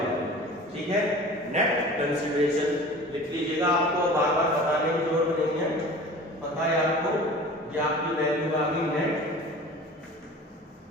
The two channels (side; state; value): both; normal; correlation 0.41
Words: गई। ठीक है, नेट कंसीडरेशन लिख लीजिएगा, आपको बार बार बताने की जरूरत नहीं है, पता है आपको, ये आपकी वैल्यू आ गई नेट